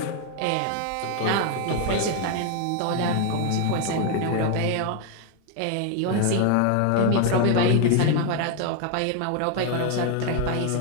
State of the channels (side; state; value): both; different; correlation 0.01